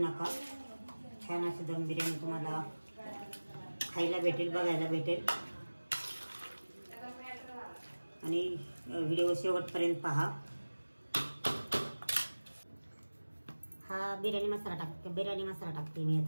छान अशी दम बिर्याणी तुम्हाला खायला भेटेल, बघायला भेटेल आणि व्हिडिओ शेवटपर्यंत पहा। हा बिर्याणी मसाला टाकते मी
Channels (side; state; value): both; inverted; correlation -1.00